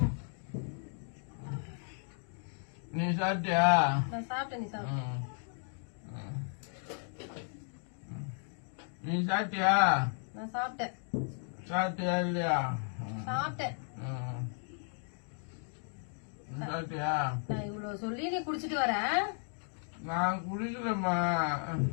நீ சாப்பிட்டியா? நான் சாப்பிட்டேன். நீ சாப்பிட்ட? நீ சாப்பிட்டியா? நான் சாப்பிட்டேன். சாப்பிட்டியா இல்லையா? சாப்பிட்டேன். சாப்பிட்டியா? நான் இவ்வளவு சொல்லி நீ குடிச்சிட்டு வர? நான் குடிக்கலம்மா.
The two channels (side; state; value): right; silent; 55 dB below the other